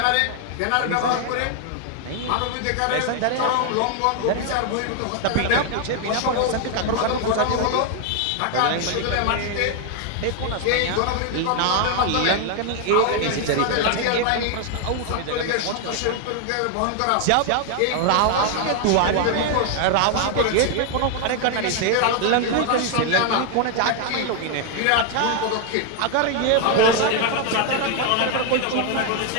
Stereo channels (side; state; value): both; different; correlation 0.00